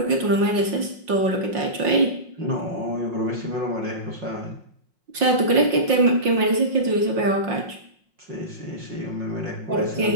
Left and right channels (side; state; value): left; late; 5.6 ms